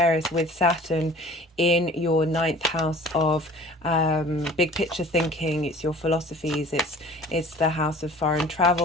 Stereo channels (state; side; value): normal; both; correlation 0.46